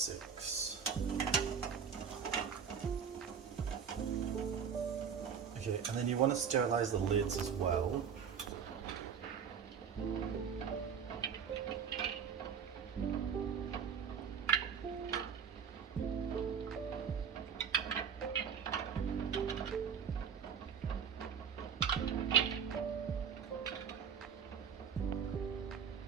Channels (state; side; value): quieter; left; 7.1 dB